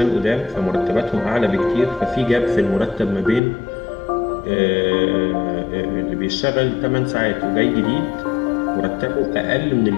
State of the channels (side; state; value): right; drops out; at 3.4 s